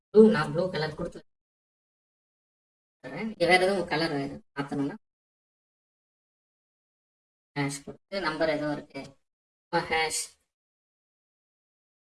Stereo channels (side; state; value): both; identical; correlation 1.00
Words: நான் ப்ளூ கலர் கொடுத்துறேன். வேற எதுவும் கலர் மாற்றணும்னா ஹேஷ் கொடுத்து நம்பர் எதுவும் இருக்கு ஹேஷ்